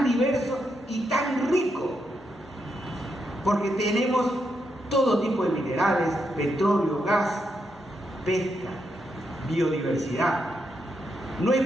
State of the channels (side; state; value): both; normal; correlation 0.82